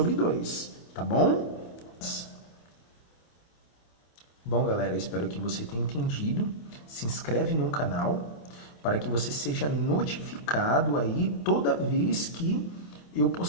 2, tá bom? Bom, galera, espero que você tenha entendido. Se inscreve no canal para que você seja notificado aí toda vez que eu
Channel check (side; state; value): right; late; 27 ms